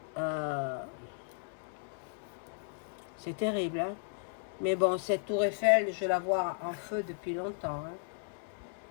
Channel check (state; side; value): silent; right; digital silence